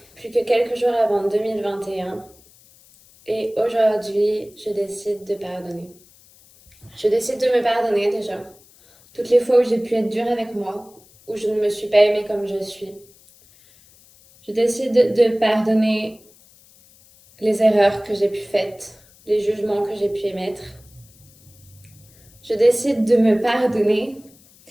plus que quelques jours avant 2021, et aujourd'hui, je décide de pardonner. Je décide de me pardonner déjà. Toutes les fois où j'ai pu être dure avec moi, où je ne me suis pas aimée comme je suis. Je décide de pardonner les erreurs que j'ai pu faire, les jugements que j'ai pu émettre. Je décide de me pardonner.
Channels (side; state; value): left; noise; hiss, 27 dB below the sound